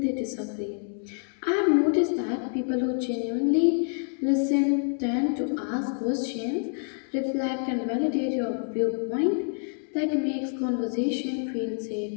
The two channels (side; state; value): right; silent; 60 dB below the other